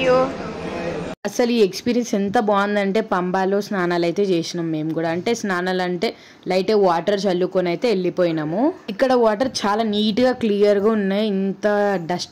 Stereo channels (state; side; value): identical; both; correlation 1.00